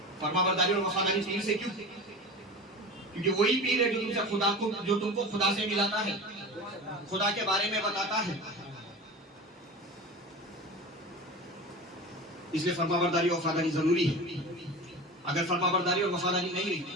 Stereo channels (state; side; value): normal; both; correlation 0.32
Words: فرما برداری اور وفاداری پیر سے کیوں؟ کیونکہ وہی پیر ہے جو تم سے خدا کو، جو تم کو خدا سے ملاتا ہے، خدا کے بارے میں بتاتا ہے۔ اس لیے فرما برداری اور وفاداری ضروری ہے۔ اگر فرما برداری اور وفاداری نہیں